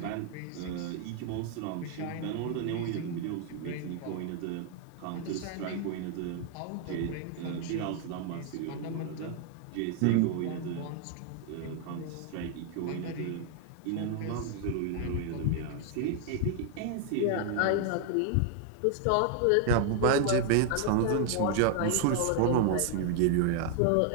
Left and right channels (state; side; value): different; both; correlation 0.00